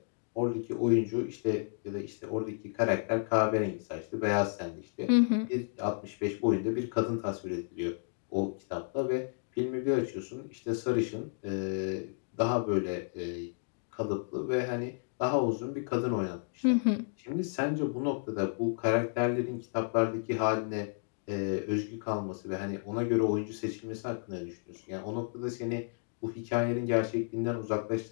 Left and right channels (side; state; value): right; silent; digital silence